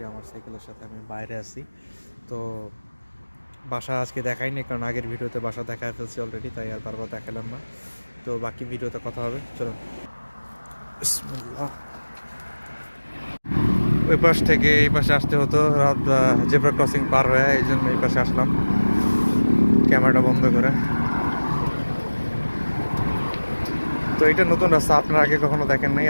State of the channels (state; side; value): inverted; both; correlation -1.00